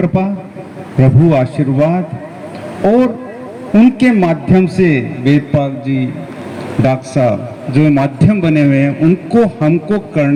प्रभु आशीर्वाद और उनके माध्यम से वेदपाल जी, डॉक्टर साहब जो माध्यम बने हुए हैं, उनको हमको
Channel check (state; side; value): identical; both; correlation 1.00